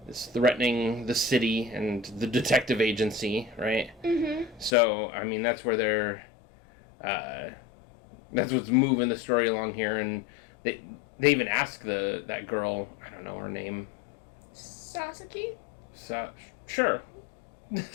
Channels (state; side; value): drops out; right; at 4.8 s